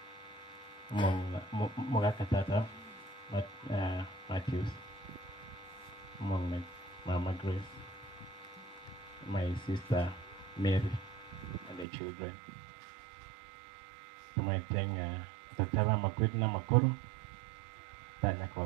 Mogakatata, Matthews, Mama Grace, my sister Mary, and the children. So my thing, Dr. Makwitna Makoro, Tanya kwa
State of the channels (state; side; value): drops out; left; at 11.9 s